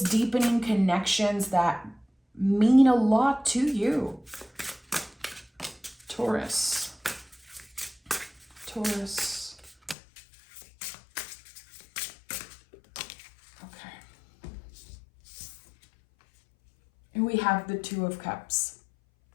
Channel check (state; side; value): drops out; right; at 10.0 s